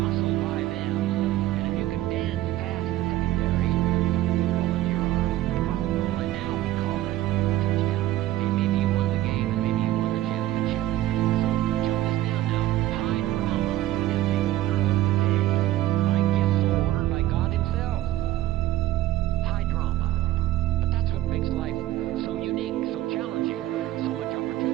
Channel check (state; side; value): quieter; left; 14.6 dB